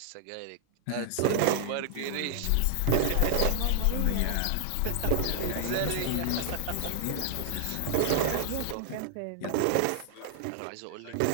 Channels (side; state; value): both; different; correlation 0.00